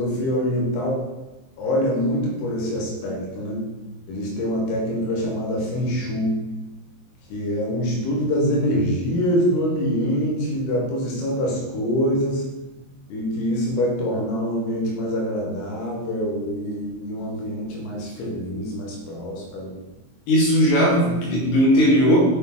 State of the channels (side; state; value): right; late; 23 ms